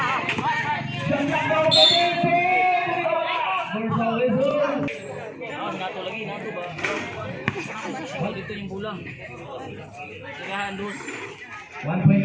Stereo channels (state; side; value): identical; both; correlation 1.00